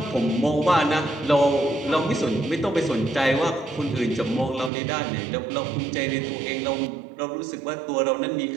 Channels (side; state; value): left; drops out; at 4.7 s